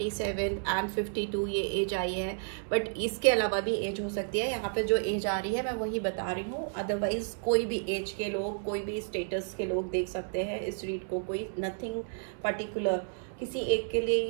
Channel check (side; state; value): left; silent; 57 dB below the other